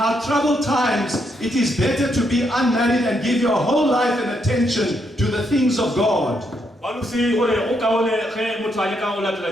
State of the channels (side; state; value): both; normal; correlation 0.77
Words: troubled times, it is better to be unmarried and give your whole life and attention to the things of God.